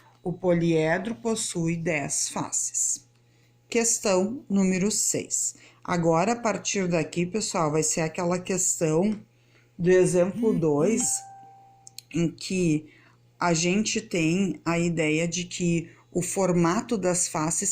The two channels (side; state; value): both; identical; correlation 1.00